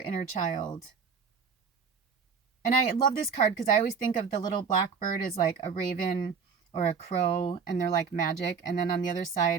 inner child. And I love this card because I always think of the little blackbird as like a raven or a crow, and they're like magic. And then on the other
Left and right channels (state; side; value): quieter; left; 5.8 dB